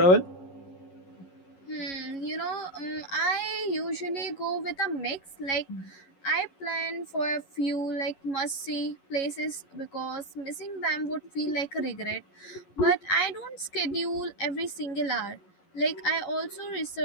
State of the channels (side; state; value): right; late; 11 ms